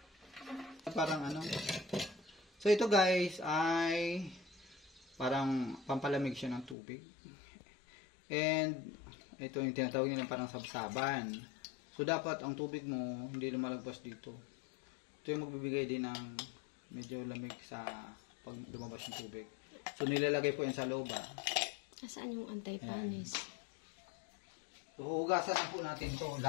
Parang ano. So ito guys ay parang pampalamig siya ng tubig. And ito yung tinatawag nila parang sabsaban. So dapat ang tubig mo hindi lumalagpas dito. Ito yung magbibigay din ng medyo lamig sa pag lumabas ng tubig. So nilalagay po yan sa loob. Nasaan yung anti-panis? So, hugasan na po natin to.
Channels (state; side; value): drops out; right; at 6.8 s